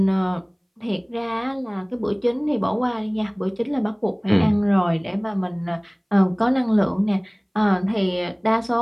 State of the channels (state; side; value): identical; both; correlation 1.00